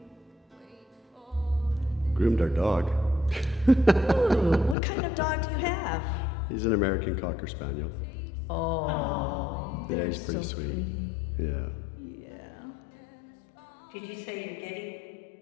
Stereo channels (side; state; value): right; drops out; at 4.8 s